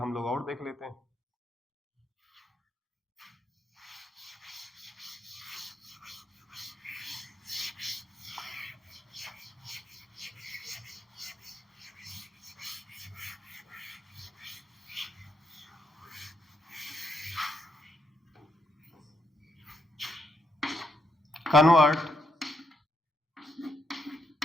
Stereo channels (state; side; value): normal; both; correlation 0.78